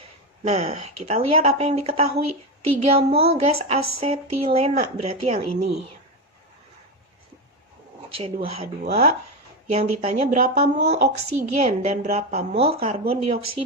Nah, kita lihat apa yang diketahui. 3 mol gas asetilena, berarti yang ini. C2H2. Yang ditanya berapa mol oksigen dan berapa mol karbon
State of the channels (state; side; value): normal; both; correlation 0.13